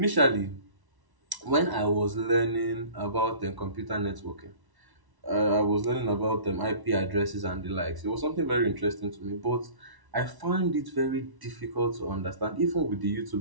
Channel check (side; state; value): left; late; 1.1 ms